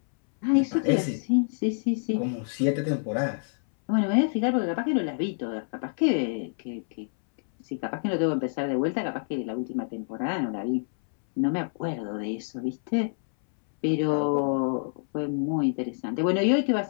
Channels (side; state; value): right; silent; 60 dB below the other